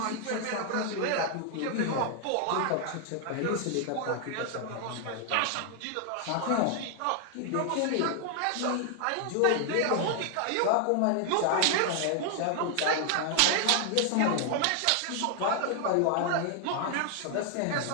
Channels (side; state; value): both; different; correlation 0.00